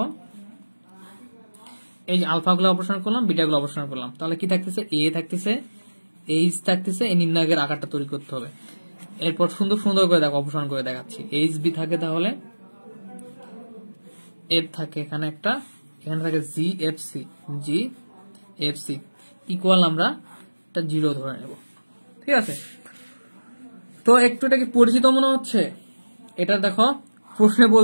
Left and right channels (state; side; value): inverted; both; correlation -1.00